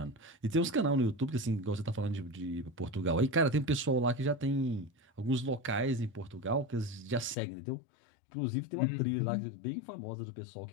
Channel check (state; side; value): drops out; right; at 7.4 s